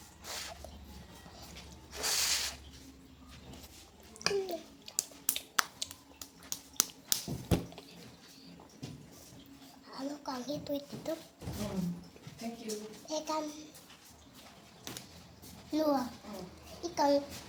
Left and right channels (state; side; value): identical; both; correlation 1.00